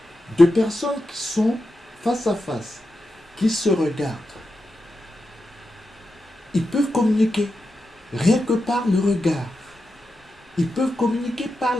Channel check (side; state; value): both; normal; correlation 0.89